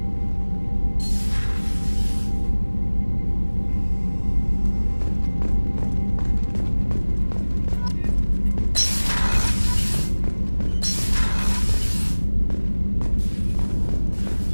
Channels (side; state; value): both; inverted; correlation -1.00